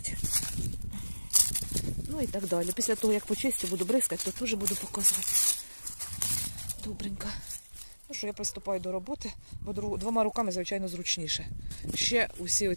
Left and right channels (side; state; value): both; inverted; correlation -1.00